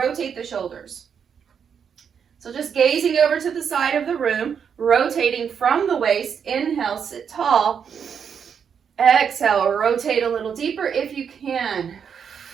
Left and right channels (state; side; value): quieter; left; 7.3 dB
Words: the shoulders. So just gazing over to the side of the room, rotating from the waist. Inhale, sit tall. Exhale, rotate a little deeper if you can.